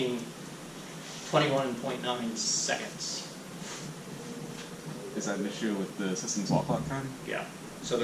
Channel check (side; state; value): both; identical; correlation 1.00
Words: 21.9 seconds. Is that an issue with the system's wall clock time? Yeah. So